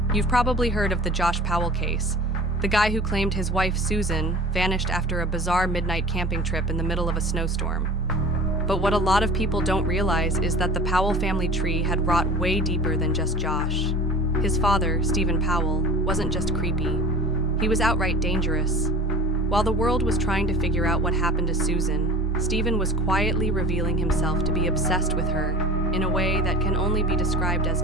You've probably heard of the Josh Powell case, the guy who claimed his wife Susan vanished after a bizarre midnight camping trip in the middle of a snowstorm. But what a lot of people don't realize is that the Powell family tree had rot way deeper than just Josh. His father, Stephen Powell, wasn't just creepy. He was outright dangerous. While the world was trying to figure out what happened to Susan, Stephen was quietly revealing himself to be obsessed with her in a way that can only be described as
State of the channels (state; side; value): normal; both; correlation 0.40